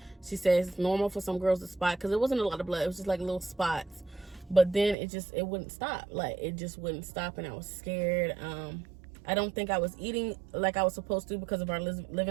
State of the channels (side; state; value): left; drops out; at 5.0 s